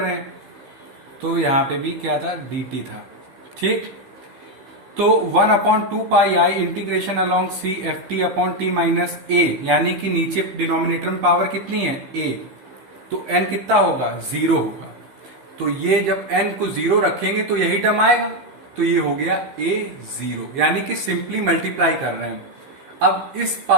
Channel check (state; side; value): late; left; 15 ms